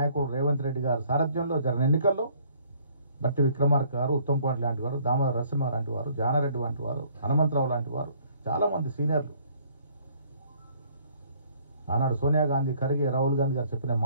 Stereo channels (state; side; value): inverted; both; correlation -0.60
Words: రేవంత్ రెడ్డి గారు సారథ్యంలో జరిగిన ఎన్నికల్లో బట్టి విక్రమార్క గారు, ఉత్తమ్ కుమార్ లాంటి వారు, దామోదర నరసింహ లాంటి వారు, జానారెడ్డి వంటి వారు, హనుమంతరావు లాంటి వారు, చాలామంది సీనియర్లు ఆనాడు సోనియా గాంధీ, ఖర్గే, రాహుల్ గాంధీ గారు చెప్పిన